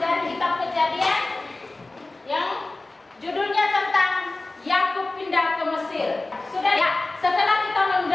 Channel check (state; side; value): quieter; right; 3.0 dB